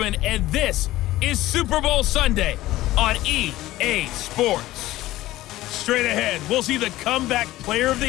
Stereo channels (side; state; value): right; quieter; 16.2 dB